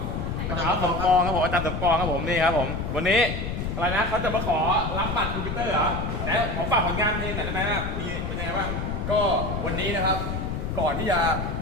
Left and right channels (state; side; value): noise; left; rumble, 3 dB below the sound